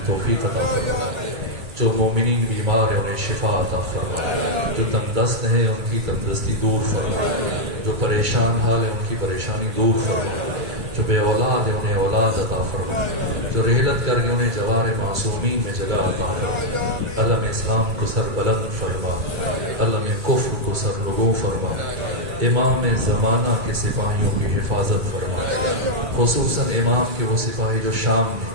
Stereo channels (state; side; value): late; left; 2.2 ms